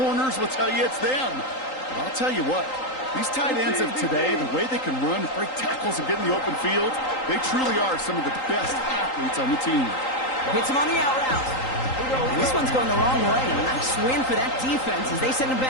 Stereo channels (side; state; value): right; late; 3.8 ms